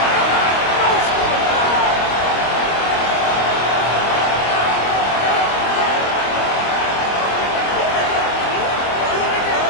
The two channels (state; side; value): late; right; 25 ms